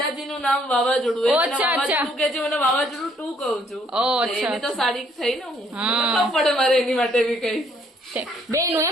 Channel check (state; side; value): normal; both; correlation 0.66